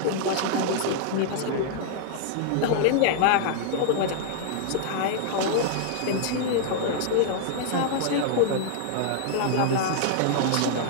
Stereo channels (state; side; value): different; both; correlation -0.01